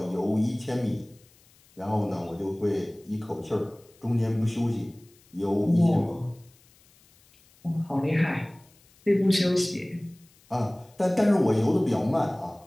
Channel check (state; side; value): noise; left; hiss, 30 dB below the sound